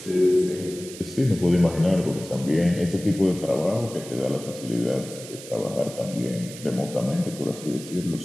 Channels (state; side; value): noise; right; hiss, 14 dB below the sound